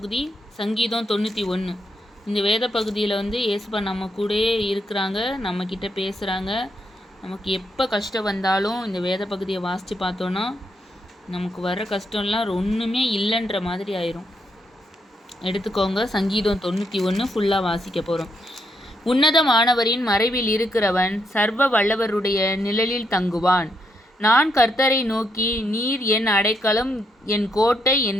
சங்கீதம் 91. இந்த வேத பகுதியில் ஏசுப்பா நம்ம கூடயே இருக்கிறாங்க, நம்மக்கிட்ட பேசுகிறாங்க. நமக்கு எப்போ கஷ்டம் வந்தாலும் இந்த வேத பகுதியை வாசித்து பார்த்தோன்னா நமக்கு வர கஷ்டம்லாம் ஒன்றுமே இல்லைன்ற மாதிரி ஆயிரும். எடுத்துக்கோங்க, சங்கீதம் 91 ஃபுல்லாக வாசிக்க போகிறோம். உன்னதமானவரின் மறைவில் இருக்கிறவன் சர்வ வல்லவருடைய நிழலில் தங்குவான். நான் கர்த்தரை நோக்கி, நீர் என் அடைக்கலம், என் கோட்டை,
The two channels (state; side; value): normal; both; correlation 0.78